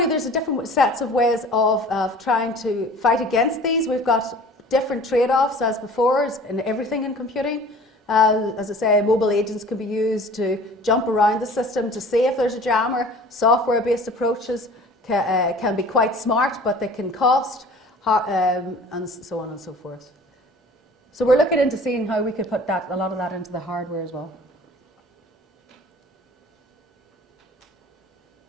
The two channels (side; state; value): both; normal; correlation 0.46